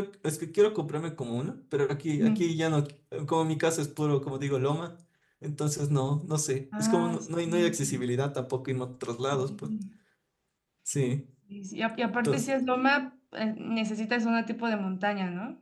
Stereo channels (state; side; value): identical; both; correlation 1.00